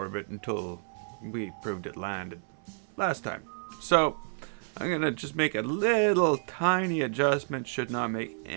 until we proved it landed last time. So I'm gonna just make a little tiny adjustment, should not make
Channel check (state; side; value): silent; left; 58 dB below the other